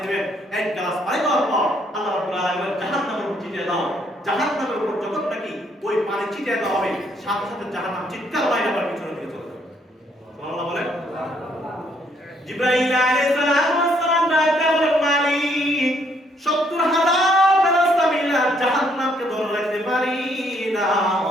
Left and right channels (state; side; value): normal; both; correlation 0.69